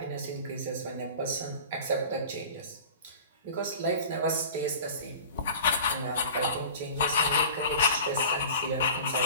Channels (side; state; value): both; inverted; correlation -0.39